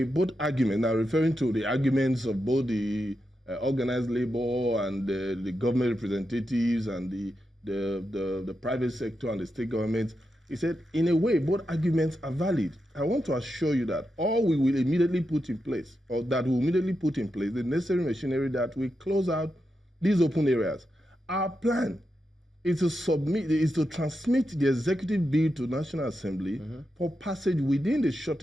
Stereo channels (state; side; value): normal; both; correlation 0.87